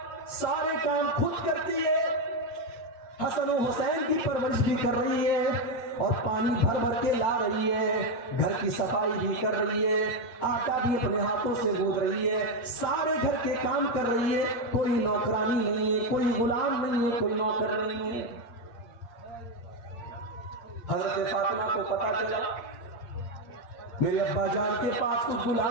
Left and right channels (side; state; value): right; late; 8.7 ms